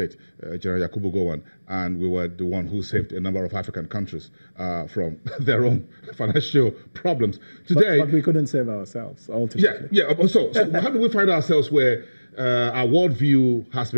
General Yakubu Gowon, and we were the one who saved a number of African countries from their own financial problems. Today, but we couldn't save ourselves, ultimately. Yeah. So how do we find ourselves where our worldview has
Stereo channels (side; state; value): both; inverted; correlation -1.00